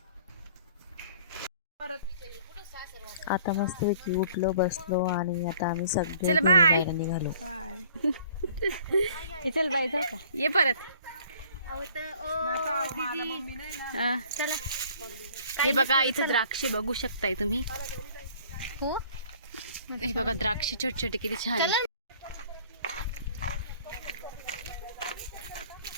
आता मस्तपैकी उठलो बसलो आणि आता आम्ही सगळे चल बाय बाहेर निघालो. चल बाय जाऊ का, ये परत. हे बघा इथं द्राक्षे बघू शकताय तुम्ही. हे बघा द्राक्षे छोटे छोटे किती छान आहे.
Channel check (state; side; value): inverted; both; correlation -0.53